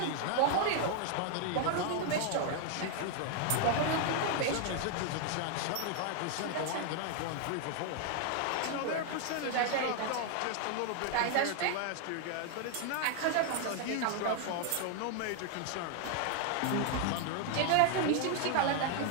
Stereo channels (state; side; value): different; both; correlation 0.00